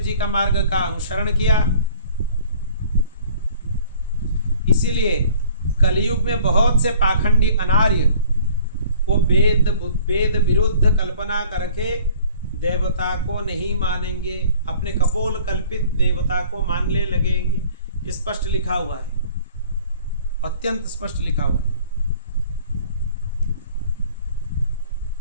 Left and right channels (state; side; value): inverted; both; correlation -0.51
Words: जी का मार्ग का अनुसरण किया। इसीलिए कलयुग में बहुत से पाखंडी अनार्य वो वेद विरुद्ध कल्पना करके देवता को नहीं मानेंगे, अपने कपोल कल्पित देवता को मानने लगेंगे। स्पष्ट लिखा हुआ है, अत्यंत स्पष्ट लिखा हुआ है।